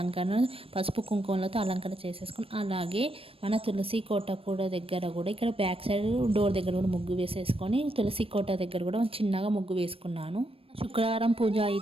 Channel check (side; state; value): left; late; 0.27 ms